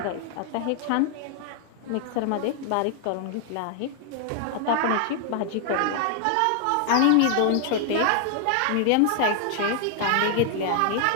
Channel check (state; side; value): different; both; correlation 0.00